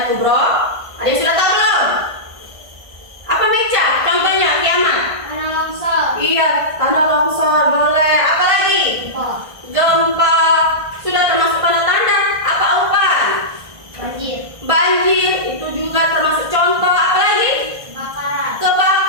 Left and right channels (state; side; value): late; left; 1.5 ms